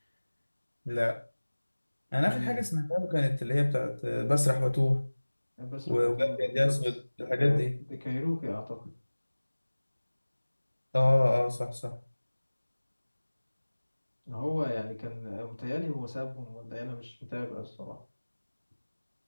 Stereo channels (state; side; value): inverted; both; correlation -1.00